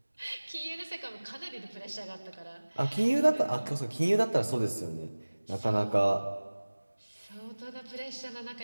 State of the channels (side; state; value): both; inverted; correlation -1.00